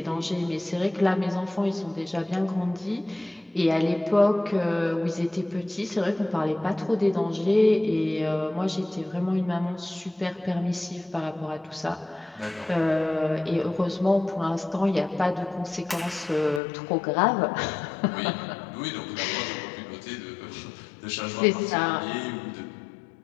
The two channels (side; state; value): right; drops out; at 16.6 s